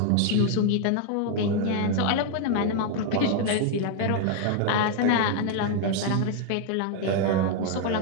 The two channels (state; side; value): different; both; correlation 0.00